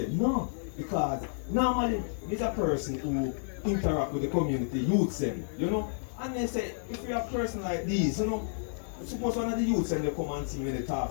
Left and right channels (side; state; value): right; silent; digital silence